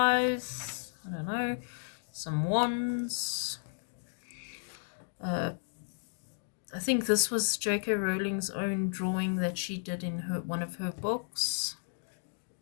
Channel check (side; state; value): right; silent; digital silence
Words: I don't know, some wands. I think this was J.K. Rowling's own drawing that she did in one of her books.